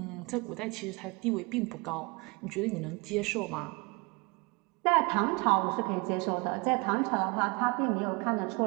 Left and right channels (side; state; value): left; quieter; 28.3 dB